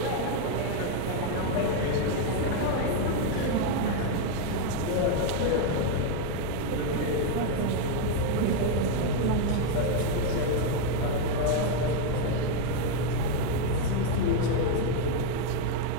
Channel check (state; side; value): different; both; correlation 0.01